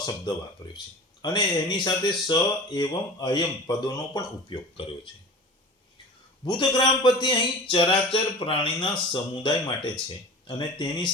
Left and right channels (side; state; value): both; normal; correlation 0.37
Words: વાપર્યો છે અને એની સાથે સ એવમ અયમ પદોનો પણ ઉપયોગ કર્યો છે. ભૂતગ્રામ પદ અહીં ચરાચર પ્રાણીના સમુદાય માટે છે અને તેની